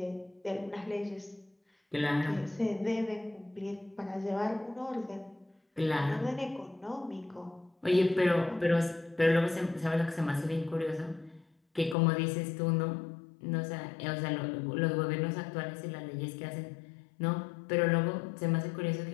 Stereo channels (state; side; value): drops out; right; at 12.0 s